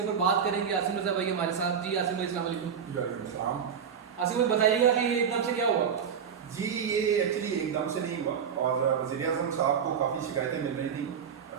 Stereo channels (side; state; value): left; quieter; 7.3 dB